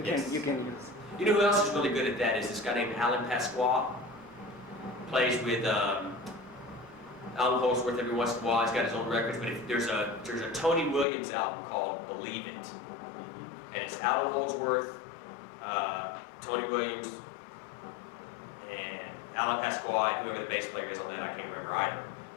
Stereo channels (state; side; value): drops out; right; at 11.1 s